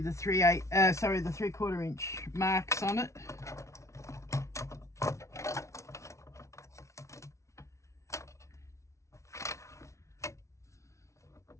the 3/4 inch marks on it.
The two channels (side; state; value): right; late; 0.14 ms